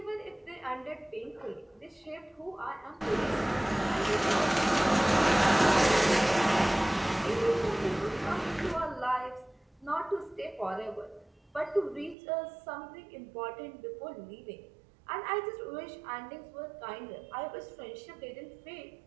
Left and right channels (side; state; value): left; drops out; at 12.2 s